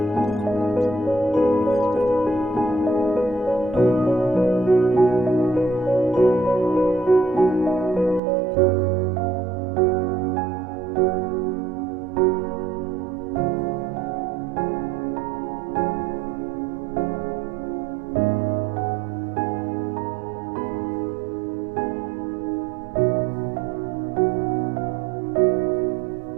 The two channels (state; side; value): drops out; left; at 8.2 s